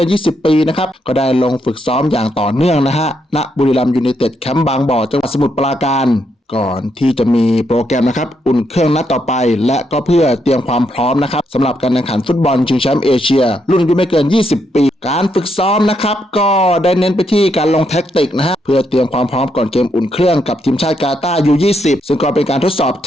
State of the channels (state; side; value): normal; both; correlation 0.78